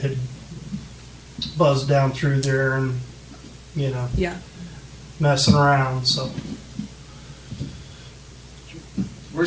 had buzzed down through there and, Yeah. messing around, so. We're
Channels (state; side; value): identical; both; correlation 1.00